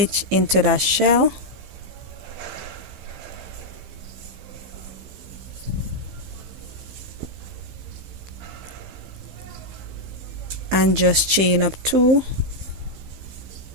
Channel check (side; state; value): left; late; 15 ms